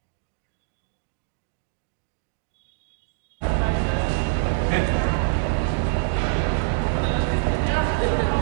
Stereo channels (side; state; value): left; silent; 62 dB below the other